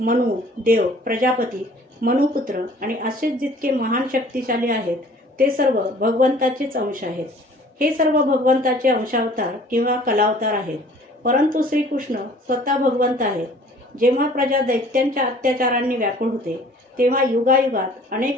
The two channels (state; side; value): normal; both; correlation 0.51